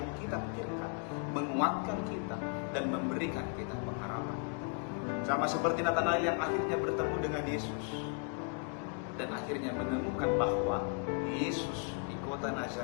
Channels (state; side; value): quieter; right; 35.8 dB